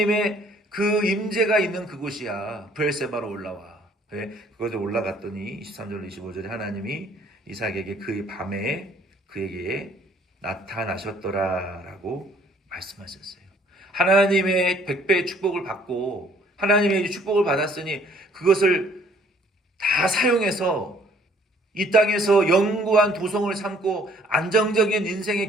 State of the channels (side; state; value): both; normal; correlation 0.60